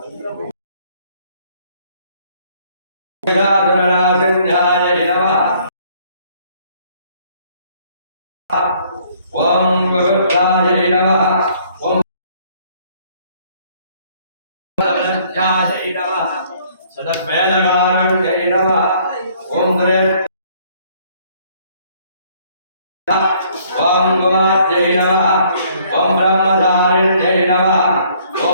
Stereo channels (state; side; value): inverted; both; correlation -0.62